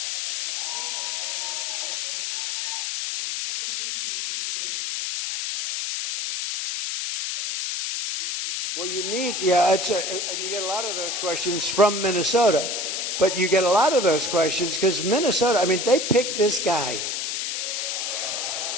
Well, you need, and you get a lot of those questions from Minnesota, but you get a lot of those questions because Minnesota, I mean, they picked this guy.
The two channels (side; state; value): left; noise; hiss, 2 dB below the sound